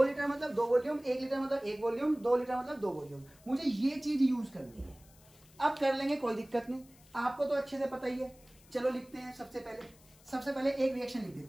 लीटर मतलब 2 वॉल्यूम, 1 लीटर मतलब 1 वॉल्यूम, 2 लीटर मतलब 2 वॉल्यूम। मुझे ये चीज यूज करनी है। अब कर लेंगे, कोई दिक्कत नहीं, आपको तो अच्छे से पता ही है। चलो लिखते हैं, सबसे पहले एक रिएक्शन लिख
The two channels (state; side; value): noise; left; hiss, 26 dB below the sound